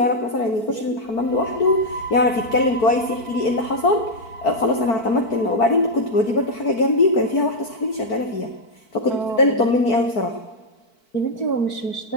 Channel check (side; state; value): right; late; 4.5 ms